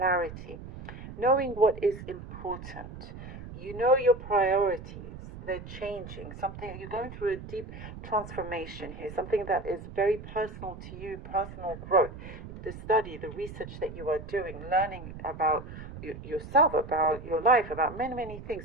knowing what is important. You know your priorities. They're changing. Something, you're going through a deep transformation here. Something that is very personal to you, personal growth. The study, the research that you are doing, learning about yourself, about your life, about many, many things.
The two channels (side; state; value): right; noise; rumble, 12 dB below the sound